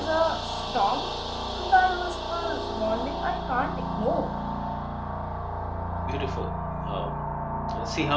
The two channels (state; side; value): identical; both; correlation 1.00